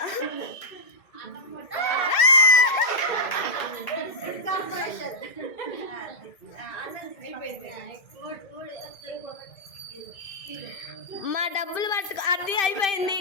మా డబ్బులు పట్టుకో. అది అయిపోయింది.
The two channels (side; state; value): right; late; 2.6 ms